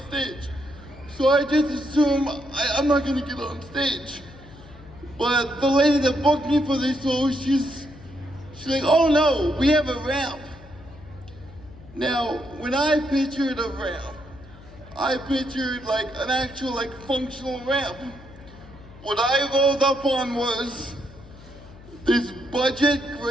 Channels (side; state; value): left; noise; hum, 20 dB below the sound